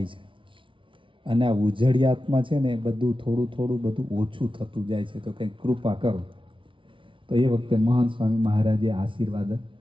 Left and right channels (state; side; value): late; left; 0.25 ms